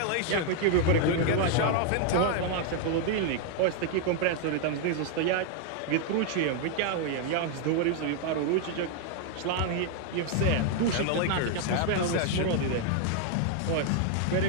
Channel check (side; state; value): both; different; correlation 0.00